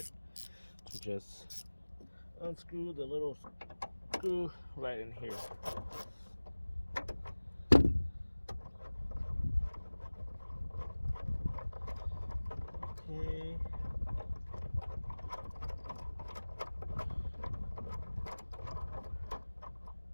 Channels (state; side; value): inverted; both; correlation -1.00